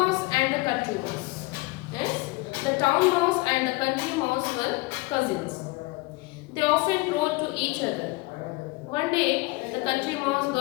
and the country mouse. Yes, the town mouse and the country mouse were cousins. They often wrote to each other. One day, the country mouse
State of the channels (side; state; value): right; quieter; 23.1 dB